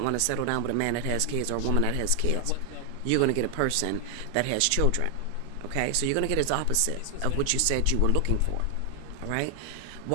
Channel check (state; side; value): different; both; correlation 0.00